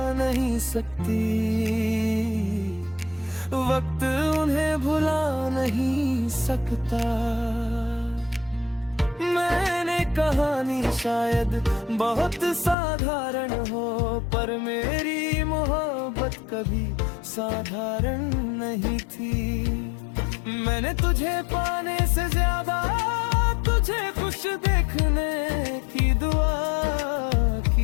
नहीं सकती, वक्त उन्हें भुला नहीं सकता। मैंने कहानी शायद बहुत साधारण हो, पर मेरी मोहब्बत कभी साधारण नहीं थी। मैंने तुझे पाने से ज्यादा तुझे खुश देखने की दुआ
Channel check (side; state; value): right; drops out; at 12.8 s